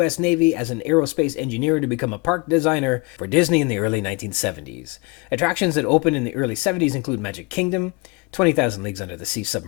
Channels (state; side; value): quieter; right; 26.9 dB